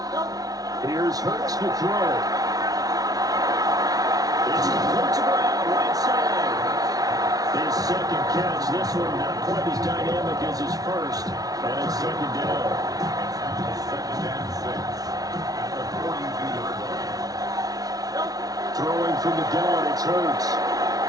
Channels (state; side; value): late; left; 0.18 ms